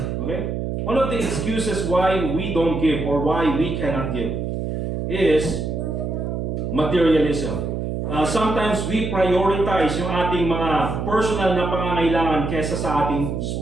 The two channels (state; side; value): noise; right; hum, 3 dB below the sound